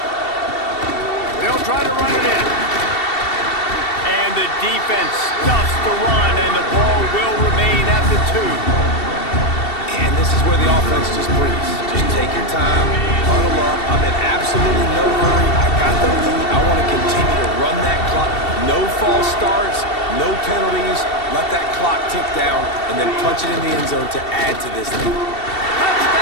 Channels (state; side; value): late; right; 2.7 ms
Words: They'll try to run it in. And the defense stuffs the run, and the ball will remain at the 2. And this is where the offense just breathes. Just take your time, huddle up. I'm in absolutely no hurry. I got the lead. I want to continue to run that clock. No false starts, no penalties. Let that clock tick down, and then punch it in the end zone to add to this lead.